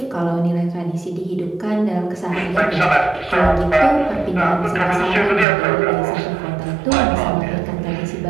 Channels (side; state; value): left; drops out; at 5.5 s